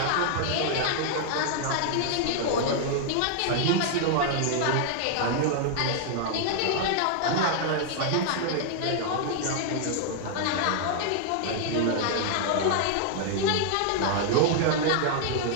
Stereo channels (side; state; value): both; different; correlation 0.00